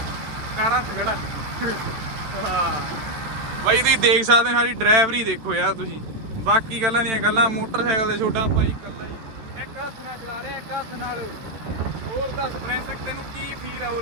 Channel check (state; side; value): late; left; 13 ms